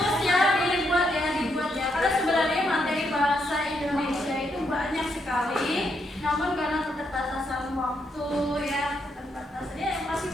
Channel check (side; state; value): both; normal; correlation 0.78